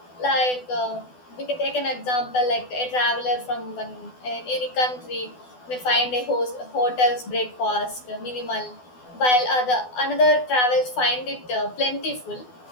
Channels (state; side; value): late; right; 12 ms